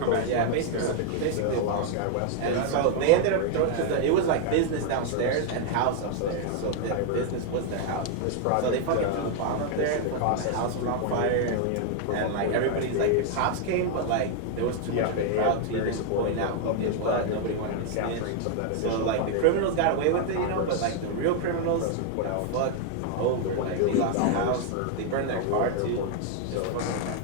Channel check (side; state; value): both; different; correlation 0.00